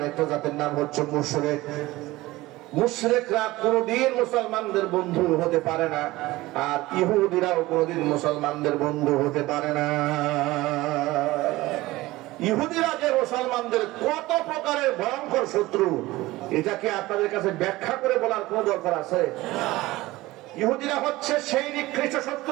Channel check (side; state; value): left; quieter; 18.8 dB